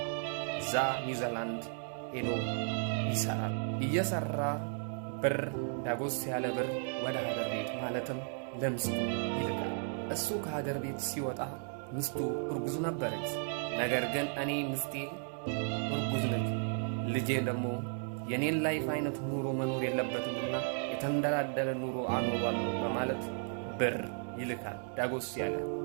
እዛ ኒውዚላንድ ሄዶ ይሰራል። እየሰራ ብር ዳጎስ ያለ ብር ወደ ሀገር ቤት ማለትም ለምስቱ ይልካል። እሱ ከሀገር ቤት ሲወጣ ምስቱ እርጉዝ ነበረች። ነገር ግን እኔ ምስቴ እርጉዝ ነች፣ ልጄ ደግሞ የኔን ላይፍ አይነት ኑሮ መኖር የለበትምና የተንደላደለ ኑሮ አኖሯለሁ በማለት ብር ይልካል ዳጎስ ያለ።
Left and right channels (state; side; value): silent; left; 55 dB below the other